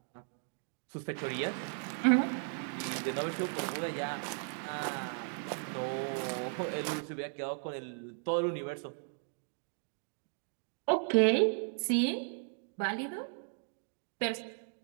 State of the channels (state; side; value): silent; left; 54 dB below the other